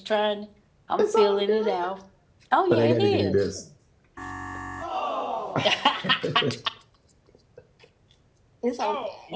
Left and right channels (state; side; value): identical; both; correlation 1.00